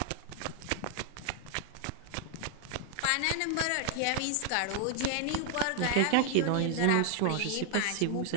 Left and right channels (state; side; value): different; both; correlation -0.01